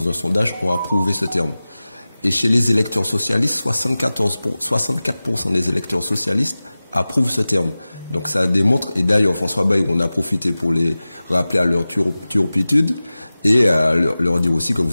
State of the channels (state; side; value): inverted; both; correlation -0.97